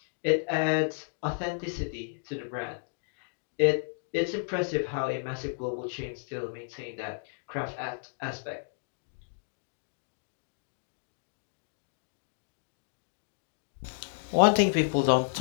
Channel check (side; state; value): right; silent; digital silence